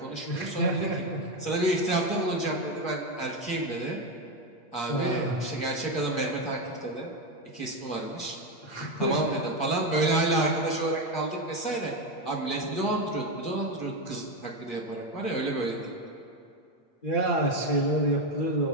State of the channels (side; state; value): right; late; 8.6 ms